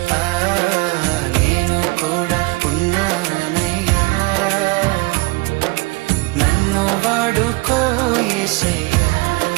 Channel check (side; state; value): left; quieter; 25.2 dB